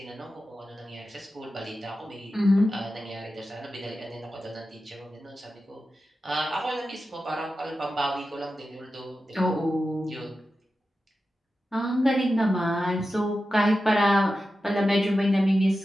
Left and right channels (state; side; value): normal; both; correlation 0.92